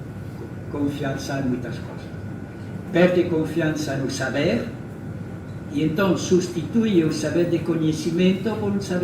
confiança em muitas coisas. Perde confiança no saber e então substitui o saber de conhecimento por um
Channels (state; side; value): identical; both; correlation 1.00